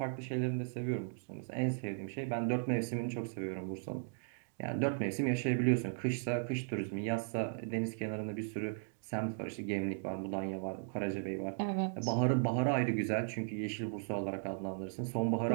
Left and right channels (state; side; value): silent; left; digital silence